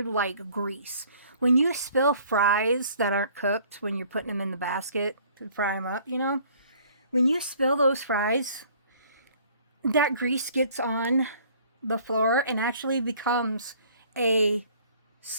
grease. When you spill fries that aren't cooked, when you're putting them in the basket to fry them up, when you spill those fries, that grease gets on the floor and actually becomes a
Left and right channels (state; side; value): inverted; both; correlation -0.56